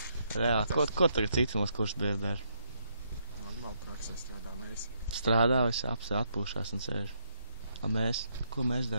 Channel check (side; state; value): both; inverted; correlation -0.76